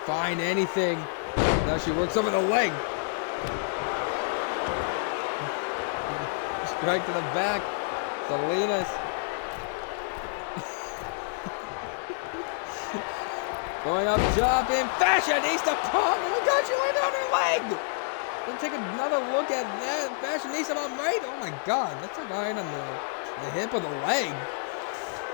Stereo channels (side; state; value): right; silent; digital silence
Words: find anything. Now she works over the leg. Strike to the back. Salinas. Going up top in Fashionista bomb. Oh my God, she landed on her leg. Then take another look at that. Fashionista bomb right. Oh my God, that's like right on the hip of the leg.